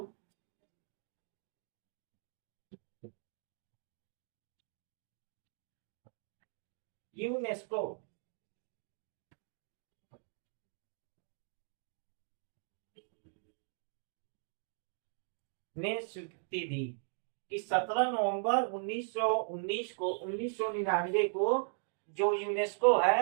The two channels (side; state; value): left; silent; digital silence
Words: यूनेस्को ने स्वीकृति दी कि 17 नवंबर 1999 को जो यूनेस्को